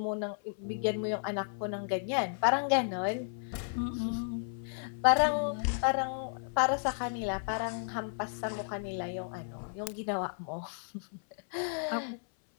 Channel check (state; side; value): silent; right; 56 dB below the other